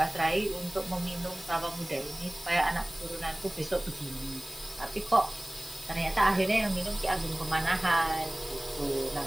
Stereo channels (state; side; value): noise; left; hiss, 15 dB below the sound